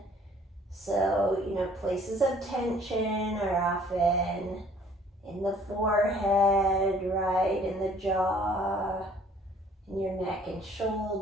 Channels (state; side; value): normal; both; correlation 0.57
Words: So, places of tension are often in the forehead, right, in the jaw, in your neck and